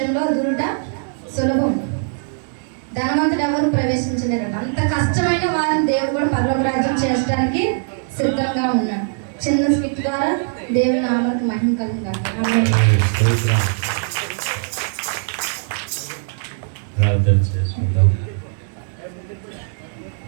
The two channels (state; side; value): silent; left; digital silence